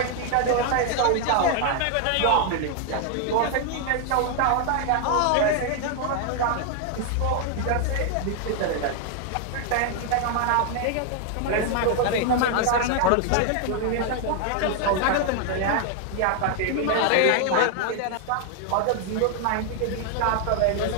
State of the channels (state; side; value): different; both; correlation 0.00